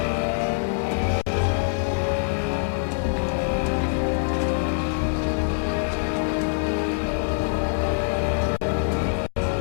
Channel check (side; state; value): right; silent; digital silence